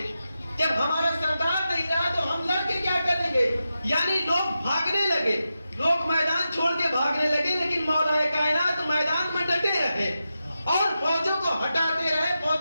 جب ہمارا سردار نہیں رہا تو ہم لڑ کے کیا کریں گے. یعنی لوگ بھاگنے لگے، لوگ میدان چھوڑ کے بھاگنے لگے، لیکن مولا کائنات میدان میں ڈٹے رہے اور فوجوں کو ہٹاتے رہے،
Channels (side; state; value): both; inverted; correlation -0.90